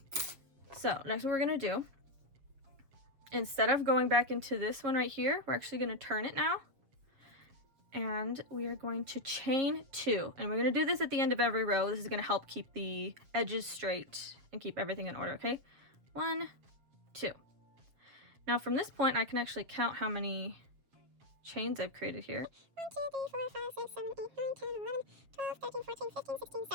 So next what we're going to do, instead of going back into this one right here, we're actually going to turn it now. and we are going to chain 2, and we're going to do this at the end of every row. This is going to help keep the edges straight and keep everything in order. Okay, 1, 2. Now from this point I can actually count how many chains I've created here. 1, 2, 3, 4, 5, 6, 7, 8, 9, 10, 11, 12, 13, 14, 15, 16,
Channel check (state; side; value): late; left; 7.5 ms